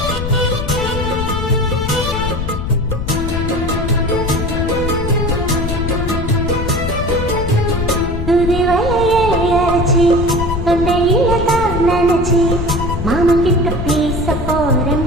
தொண்டையில தான் நினைச்சி மாமன் கிட்ட பேச போறேன்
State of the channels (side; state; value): left; noise; rumble, 4 dB below the sound